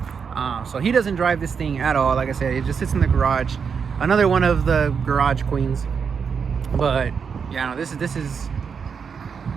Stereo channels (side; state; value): left; quieter; 6.3 dB